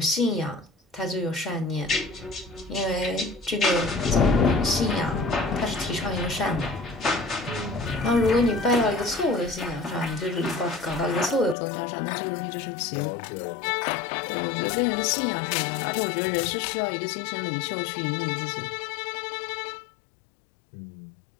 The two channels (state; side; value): drops out; right; at 11.6 s